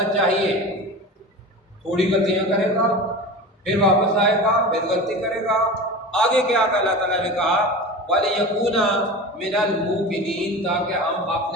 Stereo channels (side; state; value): both; normal; correlation 0.31